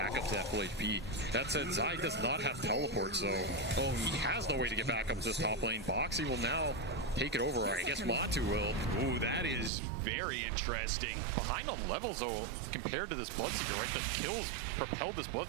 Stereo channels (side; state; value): left; drops out; at 9.7 s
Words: up to that full HP. That said, Zai does not have teleport, so he has no way to get back up to this top lane. Boxy will now take it over. I guess Matu will. Ooh, that is very interesting. Behind on levels, though, compared to this Bloodseeker, right? The kills propelled this